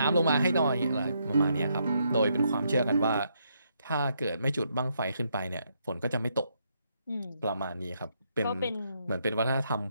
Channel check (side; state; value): both; inverted; correlation -0.77